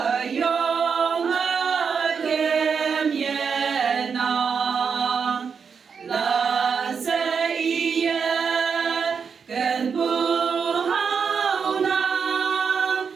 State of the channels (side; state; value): left; quieter; 6.1 dB